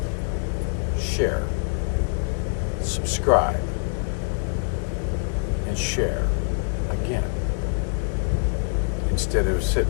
Share, subscribe, and share again, instead of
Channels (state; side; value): silent; right; digital silence